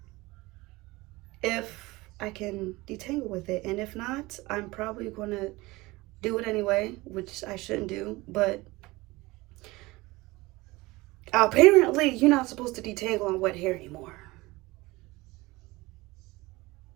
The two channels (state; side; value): quieter; left; 21.3 dB